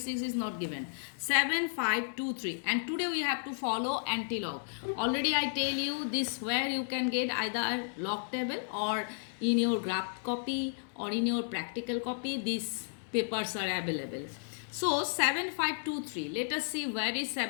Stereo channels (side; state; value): right; silent; digital silence